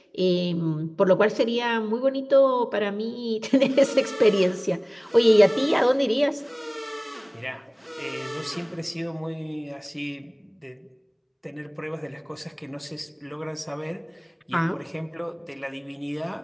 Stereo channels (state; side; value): identical; both; correlation 1.00